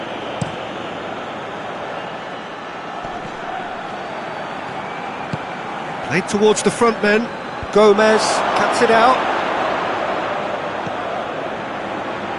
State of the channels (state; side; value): identical; both; correlation 1.00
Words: Played towards the front men. Gomez cuts it out.